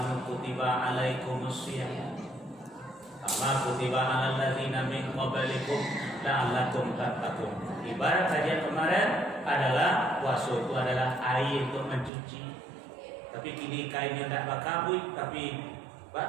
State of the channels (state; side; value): drops out; left; at 12.1 s